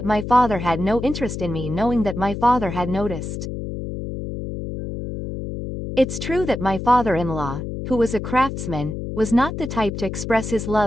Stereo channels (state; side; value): noise; left; hum, 6 dB below the sound